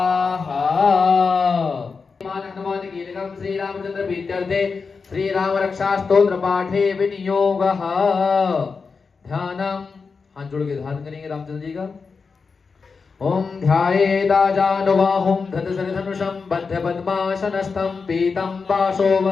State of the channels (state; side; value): quieter; right; 4.9 dB